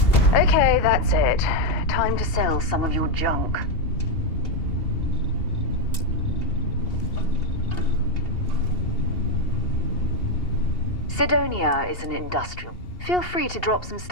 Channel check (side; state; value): right; late; 2.8 ms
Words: Okay, that's it. Time to sell some of your junk. Sidonia is an industrial. Feel free to drop some